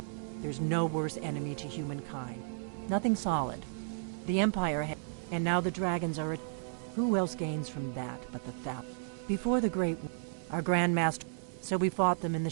there's no worse enemy to humankind. Nothing solid. The Empire and now the dragons are who else gains from that but the Thalmor? Before the Great War, our Grand Master, so we fought them in the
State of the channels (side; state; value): left; silent; digital silence